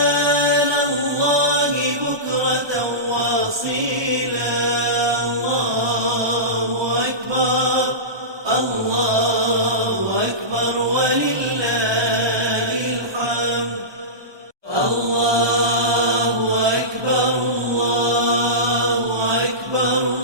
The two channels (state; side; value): late; left; 1.2 ms